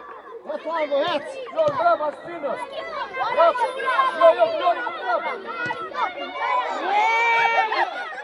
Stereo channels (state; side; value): identical; both; correlation 1.00